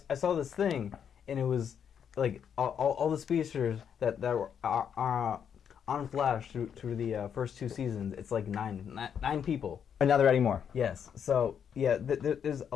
this thing, and it was like all the speedsters that were on Flash through the first 2 seasons. It's like nine people. And now they're adding more. Yes. So yeah, there's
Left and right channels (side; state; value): right; quieter; 8.0 dB